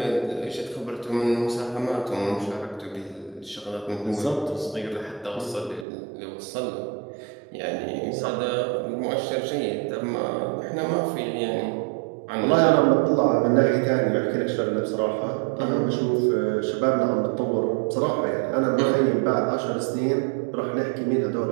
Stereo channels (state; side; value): drops out; left; at 5.9 s